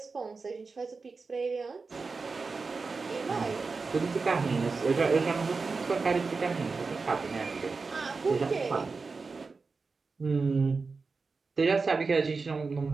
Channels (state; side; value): quieter; left; 4.4 dB